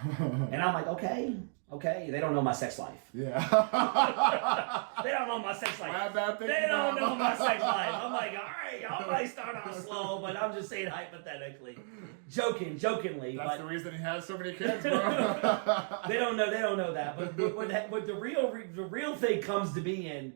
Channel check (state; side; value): silent; left; 56 dB below the other